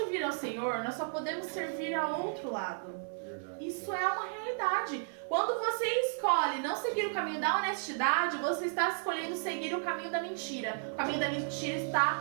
ao Senhor, nós só podemos servir ao outro lado. Isso é uma realidade. imoralidade. Quando você escolhe não seguir o caminho da honestidade, você está escolhendo seguir o caminho da mentira. O caminho da mentira está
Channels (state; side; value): silent; left; digital silence